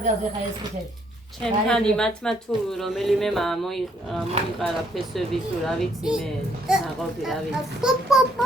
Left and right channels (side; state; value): both; normal; correlation 0.69